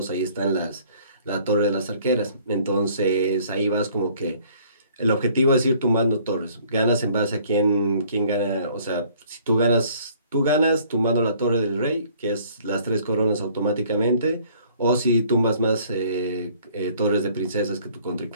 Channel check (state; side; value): inverted; both; correlation -0.58